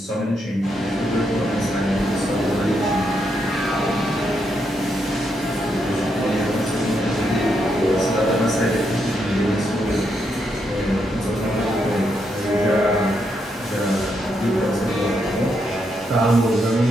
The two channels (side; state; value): both; normal; correlation 0.80